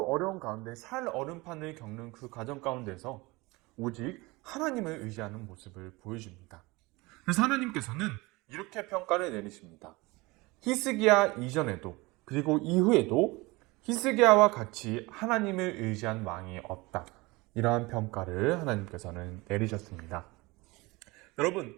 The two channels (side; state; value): left; quieter; 23.2 dB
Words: 어려운 가운데 살 얼음판을 겪는 그 과정 가운데서 오직 하나님을 의지하는 모습을 보여줍니다. 그래서 하나님께서는 이렇게 평가를 내리십니다. 히스기야 이전에도 그리고 이후에도 히스기야와 같이 하나님을 의지한 왕이 없다. 이러한 평가를 하나님께서는 내리셨습니다.